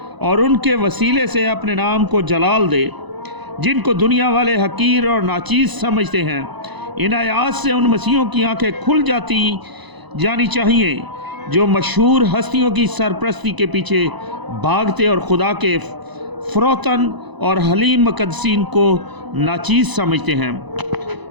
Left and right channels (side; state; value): left; late; 1.0 ms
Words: اور ان کے وسیلے سے اپنے نام کو جلال دے جن کو دنیا والے حقیر اور ناچیز سمجھتے ہیں۔ ان آیات سے ان مسیحوں کی آنکھیں کھل جانی چاہیے جو مشہور ہستیوں کی سرپرستی کے پیچھے بھاگتے اور خدا کے فروتن اور حلیم مقدسین کو ناچیز سمجھتے ہیں۔